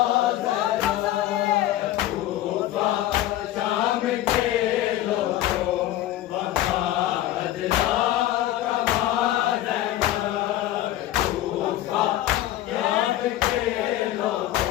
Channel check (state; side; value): quieter; right; 14.0 dB